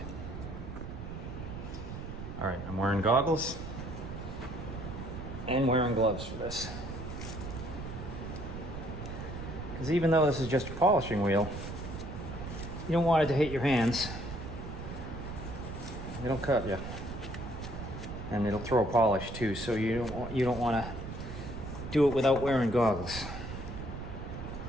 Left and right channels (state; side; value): noise; right; rumble, 8 dB below the sound